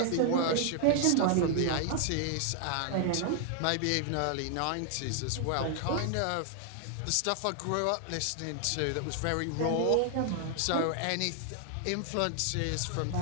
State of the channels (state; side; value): different; both; correlation 0.00